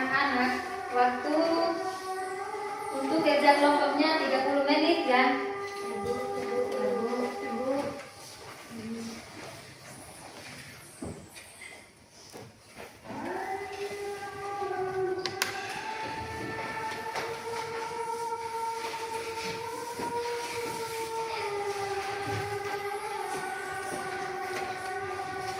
waktu untuk kerja kelompoknya 30 menit ya.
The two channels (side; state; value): both; identical; correlation 1.00